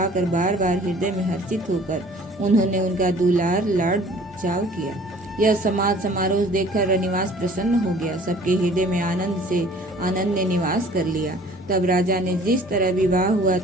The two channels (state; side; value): normal; both; correlation 0.51